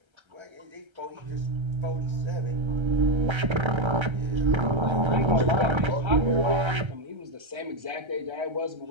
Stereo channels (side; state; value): left; late; 1.3 ms